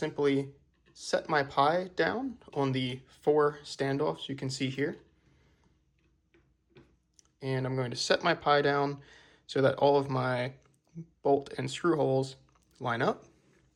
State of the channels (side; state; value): both; identical; correlation 1.00